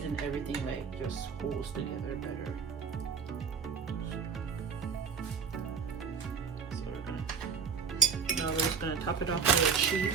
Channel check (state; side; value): quieter; left; 6.1 dB